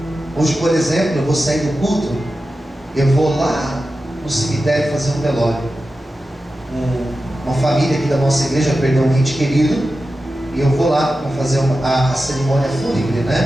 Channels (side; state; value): both; normal; correlation 0.93